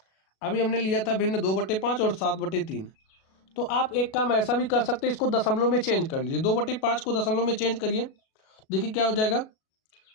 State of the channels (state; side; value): late; right; 37 ms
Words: अभी हमने लिया था भिन्न 2/5 और 7/3, तो आप एक काम ऐसा भी कर सकते हैं, इसको दशमलव में चेंज कर लीजिए। 2/5 को दशमलव में चेंज करिए, देखिए क्या हो जाएगा।